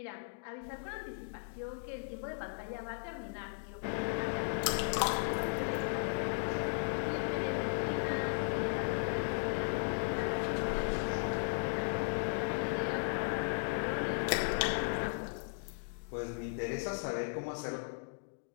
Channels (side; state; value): right; silent; digital silence